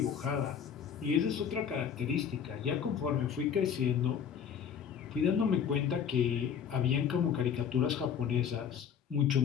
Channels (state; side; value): quieter; right; 7.8 dB